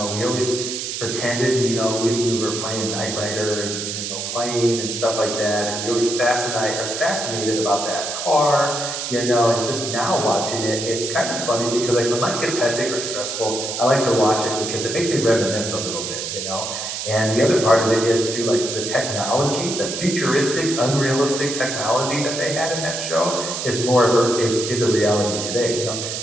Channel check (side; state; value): right; noise; hiss, 5 dB below the sound